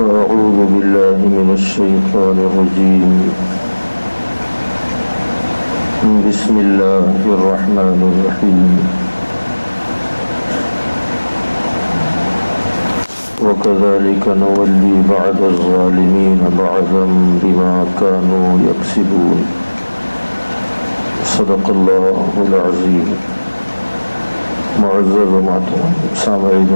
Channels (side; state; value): both; inverted; correlation -1.00